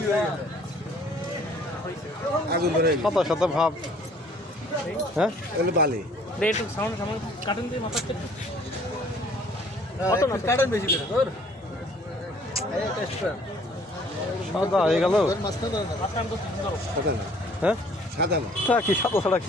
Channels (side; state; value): both; normal; correlation 0.57